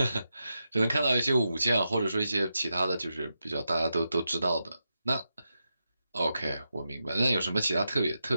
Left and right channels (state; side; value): inverted; both; correlation -0.88